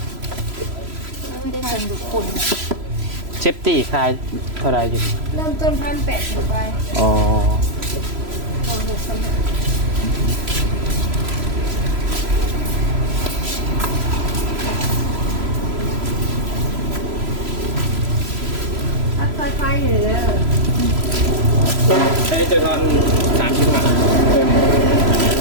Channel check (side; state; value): left; late; 3.0 ms